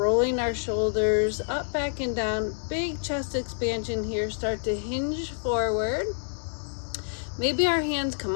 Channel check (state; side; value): silent; right; 60 dB below the other